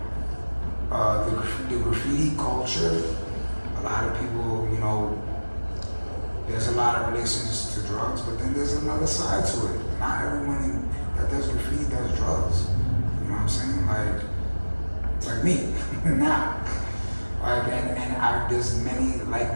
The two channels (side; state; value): both; inverted; correlation -1.00